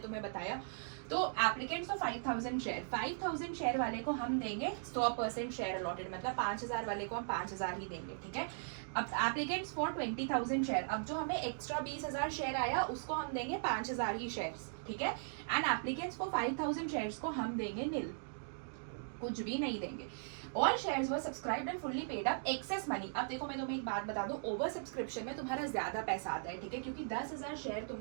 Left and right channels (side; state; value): left; silent; digital silence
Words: बताया। तो एप्लीकेंट्स ऑफ 5,000 शेयर, 5,000 शेयर वाले को हम देंगे 100% शेयर अलॉटेड, मतलब 5,000 वाले को हम 5,000 ही देंगे। ठीक है, अब एप्लीकेंट्स फॉर 20,000 शेयर, अब जो हमें एक्स्ट्रा 20,000 शेयर आया उसको हम देंगे 5,000 ही शेयर्स। ठीक है, एंड एप्लीकेंट्स फॉर 5,000 शेयर्स को हम देंगे निल, कुछ भी नहीं देंगे। All shares were subscribed and fully paid up excess money. अब देखो मैं तुम्हें एक बात बता दूं, ओवर सब्सक्रिप्शन में तुम्हारा ज्यादा पैसा आता है, ठीक है, क्योंकि 10,000 शेयर